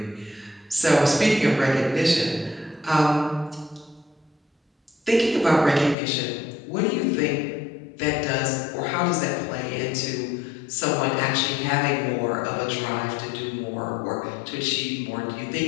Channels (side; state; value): right; drops out; at 6.0 s